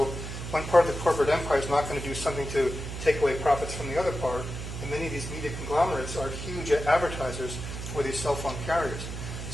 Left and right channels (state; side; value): noise; right; hum, 7 dB below the sound